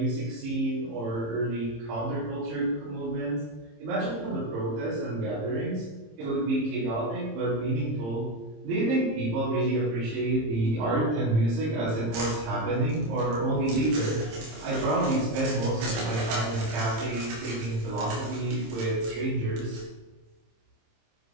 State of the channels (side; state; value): left; late; 26 ms